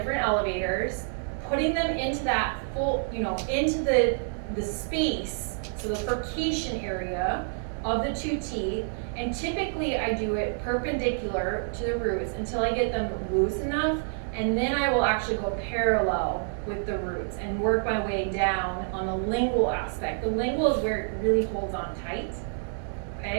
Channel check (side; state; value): left; silent; digital silence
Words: elevators, putting them into that full, into the space, so the furcation area of the two teeth. And typically I do it perpendicular to the roots until I get them loose enough, and then I will actually go parallel with the roots and work my way down on the lingual aspect. The lingual is where it really holds on tight,